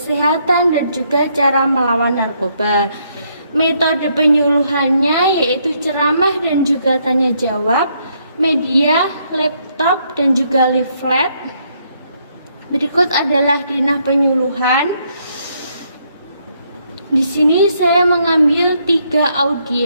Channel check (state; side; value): inverted; both; correlation -0.73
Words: dan juga cara melawan narkoba. Metode penyuluhannya yaitu ceramah dan juga tanya jawab, media, laptop, dan juga leaflet. Berikut adalah denah penyuluhan. Di sini saya mengambil 3